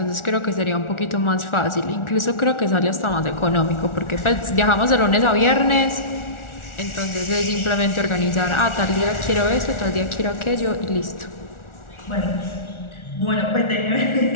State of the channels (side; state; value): right; late; 1.4 ms